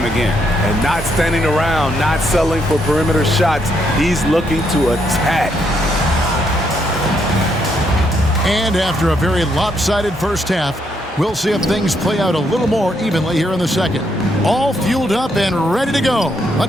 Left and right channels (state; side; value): normal; both; correlation 0.75